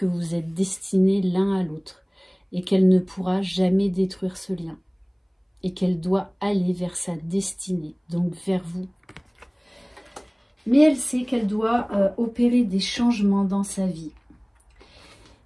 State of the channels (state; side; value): identical; both; correlation 1.00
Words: vous êtes destinés l'un à l'autre et qu'elle ne pourra jamais détruire ce lien. Et qu'elle doit aller vers sa destinée, donc vers vous. Mais elle sait qu'elle doit opérer des changements dans sa vie.